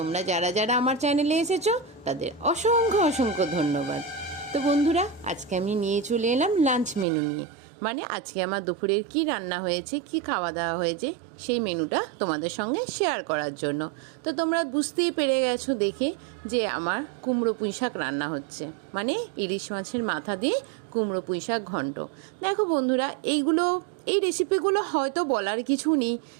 যারা যারা আমার চ্যানেলে এসেছো তাদের অসংখ্য অসংখ্য ধন্যবাদ। তো বন্ধুরা, আজকে আমি নিয়ে চলে এলাম লাঞ্চ মেনু নিয়ে। মানে আজকে আমার দুপুরের কি রান্না হয়েছে, কি খাওয়া দাওয়া হয়েছে, সেই মেনুটা তোমাদের সঙ্গে শেয়ার করার জন্য। তো তোমরা বুঝতেই পেরে গেছো দেখে যে আমার কুমড়ো পুঁই শাক রান্না হচ্ছে, মানে ইলিশ মাছের মাথা দিয়ে কুমড়ো পুঁই শাক ঘন্ট। দেখো বন্ধুরা, এই রেসিপিগুলো হয়তো বলার কিছু নেই,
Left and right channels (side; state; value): left; drops out; at 7.1 s